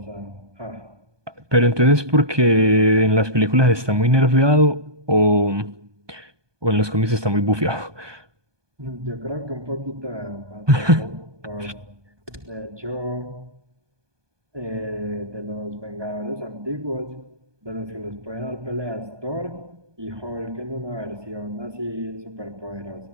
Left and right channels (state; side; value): late; left; 1.2 ms